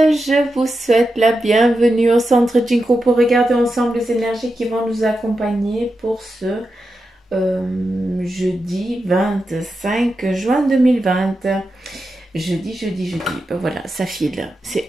vous souhaite la bienvenue au centre Jinko pour regarder ensemble les énergies qui vont nous accompagner pour ce jeudi 25 juin 2020. Jeudi. Ben voilà, ça file.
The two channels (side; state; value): both; normal; correlation 0.89